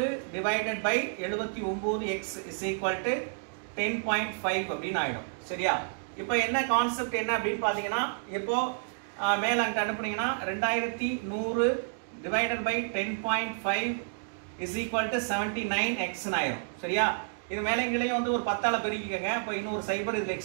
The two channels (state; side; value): silent; left; digital silence